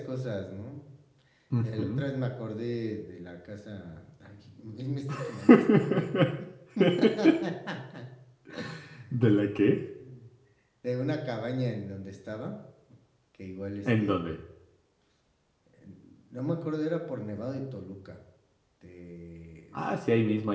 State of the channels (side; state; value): both; identical; correlation 1.00